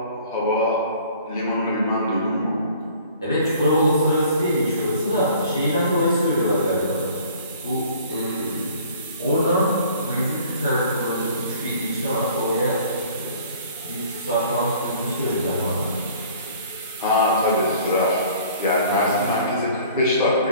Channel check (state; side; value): inverted; both; correlation -0.51